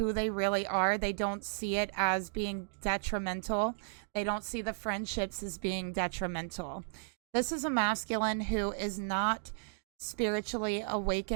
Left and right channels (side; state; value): left; silent; digital silence